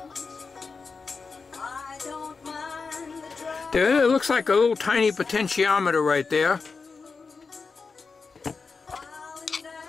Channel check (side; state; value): right; quieter; 4.7 dB